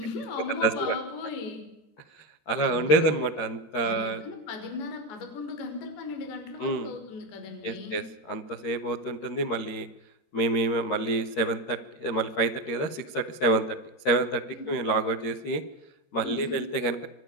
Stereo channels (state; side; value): late; right; 13 ms